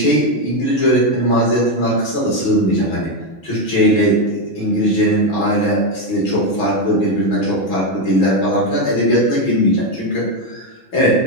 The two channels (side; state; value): right; late; 6.1 ms